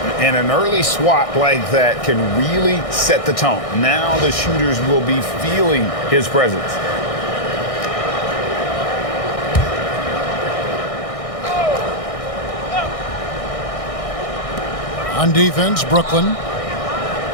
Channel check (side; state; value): right; late; 1.6 ms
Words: And an early swat like that can really set the tone. Now the shooters will be feeling his presence. On defense, Brooklyn.